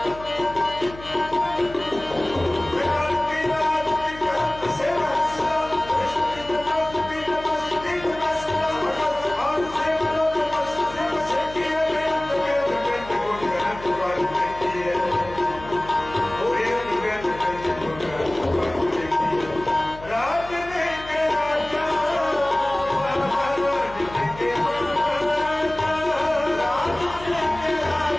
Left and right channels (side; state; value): left; noise; hum, 16 dB below the sound